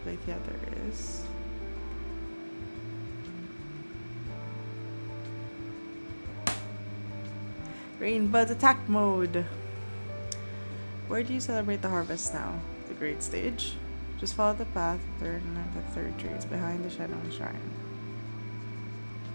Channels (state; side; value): inverted; both; correlation -1.00